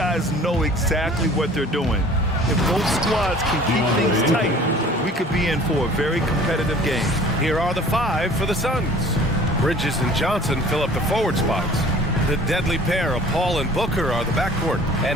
know exactly what they're doing. If both squads can keep things tight, we could be in for a very competitive game. Here are the five for the Suns. Bridges and Johnson fill up the forward spots. The deadly pair of Paul and Booker are the backcourt,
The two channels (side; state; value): both; normal; correlation 0.48